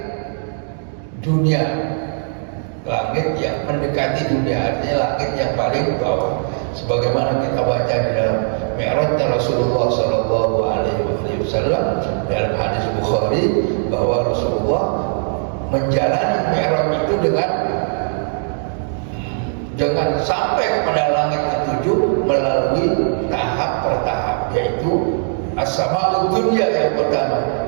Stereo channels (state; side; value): silent; left; digital silence